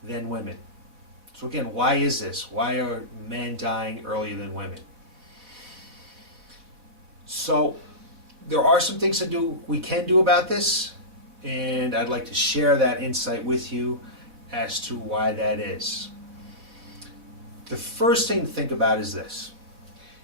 than women. So again, why is this? Why are men dying earlier than women? So there are some things we can do about this, and I'd like to share that insight with you as to why that is. The first thing to think about is this.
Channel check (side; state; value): left; late; 4.1 ms